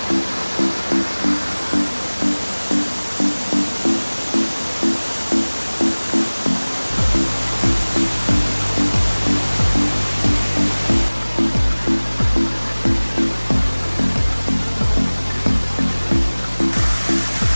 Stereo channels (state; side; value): inverted; both; correlation -1.00